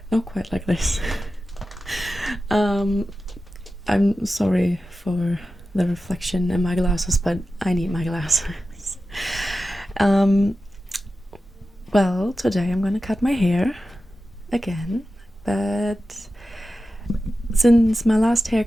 not quite like this. um, I'm sorry for the reflection in my glasses, but I need my glasses. um, well, today I'm gonna cut my hair again, but since my last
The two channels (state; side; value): normal; both; correlation 0.93